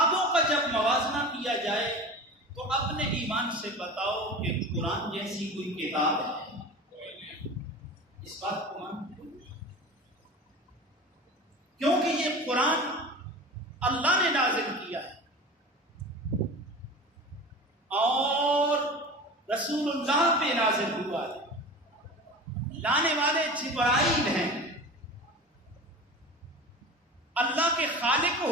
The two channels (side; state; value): both; normal; correlation 0.34